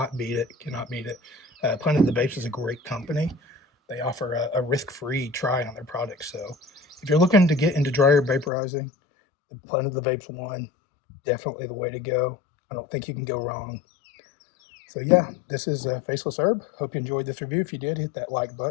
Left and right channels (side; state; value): right; drops out; at 8.5 s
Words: beat it. Cannot beat it. Planet of the Vapes is a great company. They offer a risk-free try on their products. So if you're looking to get into dry herb vaporizing, the Planet of the Vapes one, definitely the way to go. I don't think you can go wrong. So yeah, this is Faceless Herb. Hope you enjoyed this review. If you did, hit that like